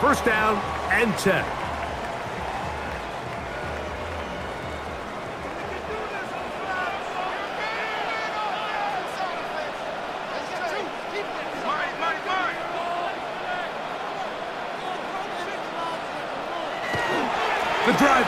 first down and 10. The drive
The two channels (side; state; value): both; identical; correlation 1.00